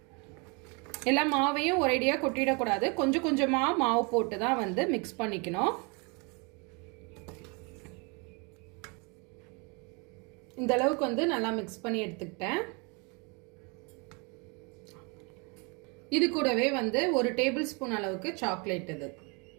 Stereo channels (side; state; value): left; quieter; 31.9 dB